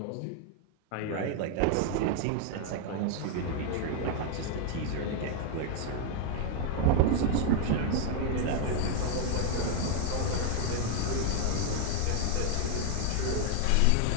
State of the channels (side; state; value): both; different; correlation 0.00